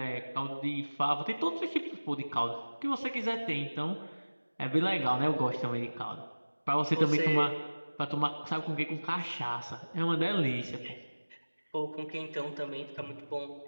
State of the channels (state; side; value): inverted; both; correlation -1.00